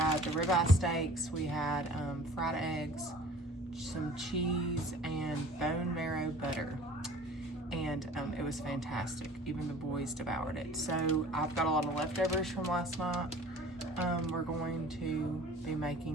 the ribeye steaks, we had fried eggs, some cheese, and bone marrow butter. And it was fantastic. Even the boys devoured it. So I've got a lot of leftovers from last night. We're going to be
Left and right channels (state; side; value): normal; both; correlation 0.47